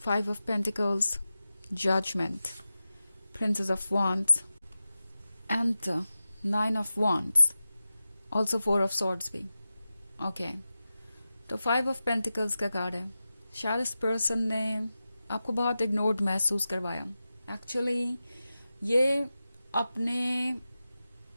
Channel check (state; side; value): inverted; both; correlation -0.93